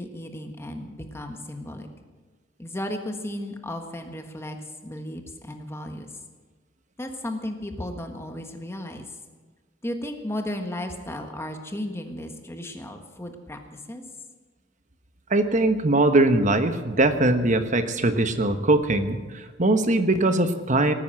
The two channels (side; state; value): both; normal; correlation 0.47